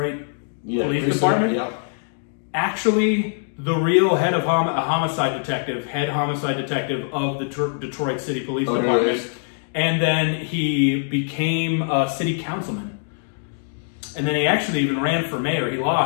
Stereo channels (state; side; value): silent; right; digital silence